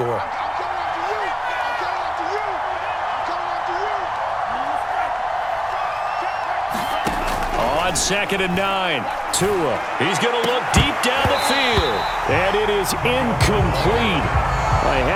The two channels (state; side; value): identical; both; correlation 1.00